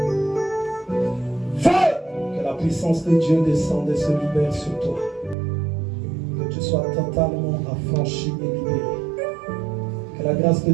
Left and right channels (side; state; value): left; drops out; at 5.4 s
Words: Feu! Que la puissance de Dieu descende et se libère sur toi. Que tu sois totalement affranchi et libéré. Que la grâce de